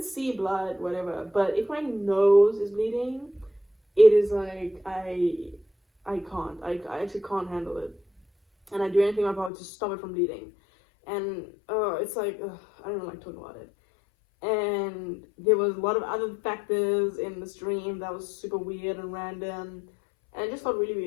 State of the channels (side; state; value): right; drops out; at 9.5 s